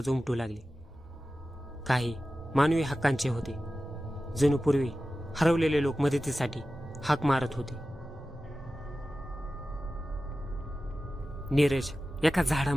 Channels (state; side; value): normal; both; correlation 0.94